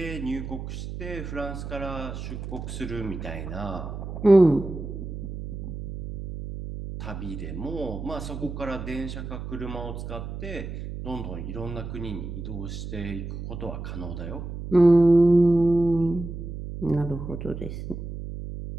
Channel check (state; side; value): noise; right; hum, 8 dB below the sound